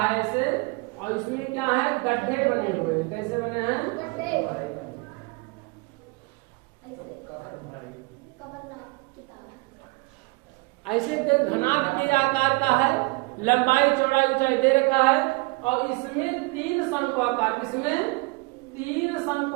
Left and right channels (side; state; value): left; quieter; 26.8 dB